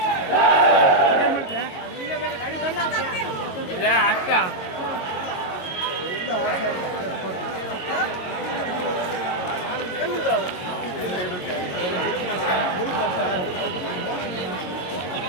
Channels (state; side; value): late; right; 22 ms